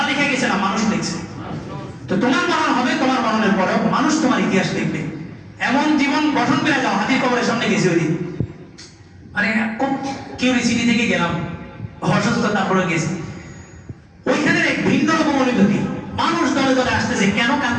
লিখে গেছে না মানুষ লিখছে? তো তোমার মরণ হবে, তোমার মরণের পরেও মানুষ তোমার ইতিহাস লিখবে। এমন জীবন গঠন করে যাও। হাতির কবরের সামনে গেছি ওই দিন, মানে খুব কিউরিসিটি থেকে গেলাম, অসুস্থ, তারপরে গেছি। ওইখানে এক ভিন্ন রকম অনুভূতি, মানুষ দলে দলে আসতেছে, কেন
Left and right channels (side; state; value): both; identical; correlation 1.00